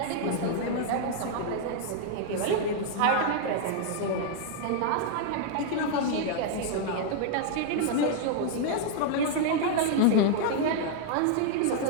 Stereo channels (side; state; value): both; different; correlation 0.00